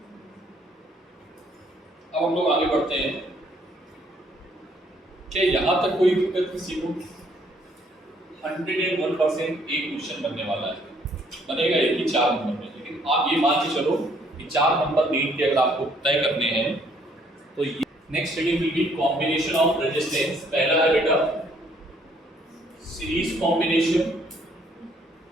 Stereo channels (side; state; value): both; normal; correlation 0.65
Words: अब हम लोग आगे बढ़ते हैं। क्या यहां तक कोई दिक्कत किसी को? 101% एक क्वेश्चन बनने वाला है, बनेगा एक ही 4 नंबर में, लेकिन आप ये मान के चलो कि 4 नंबर नीट के अगर आपको तय करने हैं तो next study will be combination of resistance. पहला है बेटा सीरीज कॉम्बिनेशन।